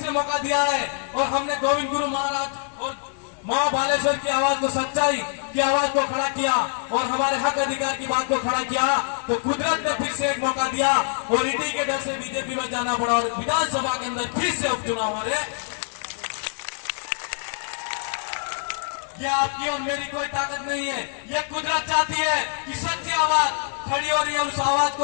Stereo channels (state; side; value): silent; right; 62 dB below the other